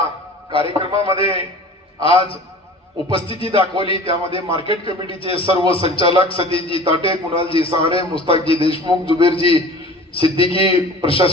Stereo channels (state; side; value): normal; both; correlation 0.41